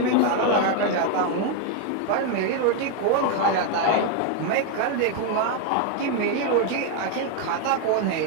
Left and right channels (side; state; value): both; different; correlation 0.01